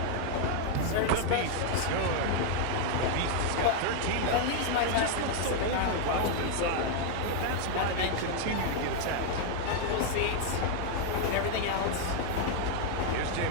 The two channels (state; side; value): different; both; correlation 0.00